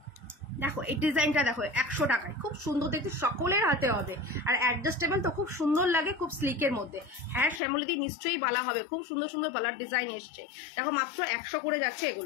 দেখো এই ডিজাইনটা দেখো 100 টাকায়, খুব সুন্দর দেখতে, সকলের হাতে হবে। আর অ্যাডজাস্টেবল তো খুব সুন্দর লাগে, খুব স্লিকের মধ্যে। হ্যাঁ শ্যামলীদি নিশ্চয়ই বালা হবে, খুব সুন্দর সুন্দর বালার ডিজাইন এসছে। দেখো মাত্র 100 করে যাচ্ছে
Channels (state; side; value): drops out; right; at 7.6 s